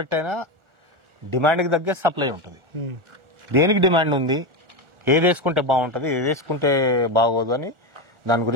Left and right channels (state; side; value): late; left; 1.4 ms